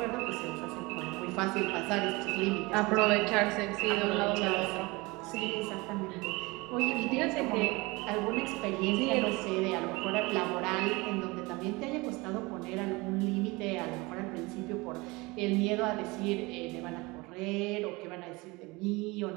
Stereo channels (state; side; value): quieter; left; 24.0 dB